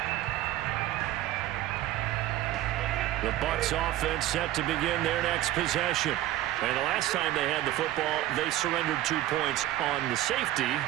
The Bucs offense set to begin their next possession. And the last time they had the football, they surrendered 2 points on the safety.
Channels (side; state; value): left; quieter; 14.4 dB